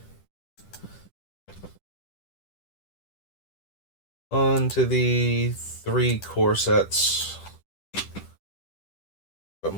On to the 3 core sets of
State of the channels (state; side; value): late; right; 10 ms